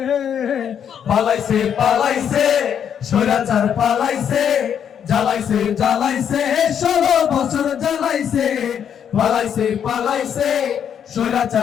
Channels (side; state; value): right; quieter; 8.5 dB